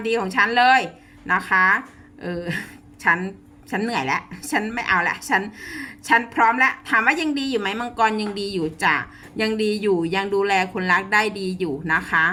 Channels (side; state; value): both; identical; correlation 1.00